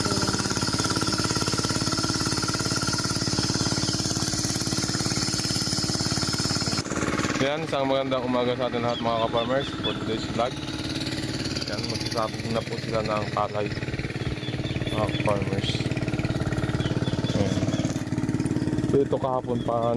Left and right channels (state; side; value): identical; both; correlation 1.00